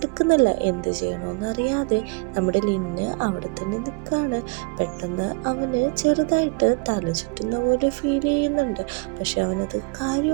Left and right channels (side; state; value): left; quieter; 29.3 dB